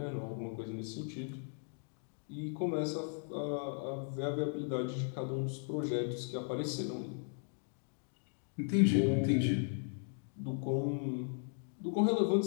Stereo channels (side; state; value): right; silent; 53 dB below the other